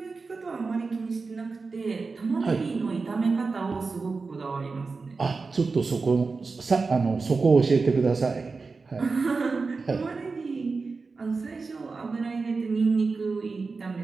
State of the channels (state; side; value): quieter; left; 4.3 dB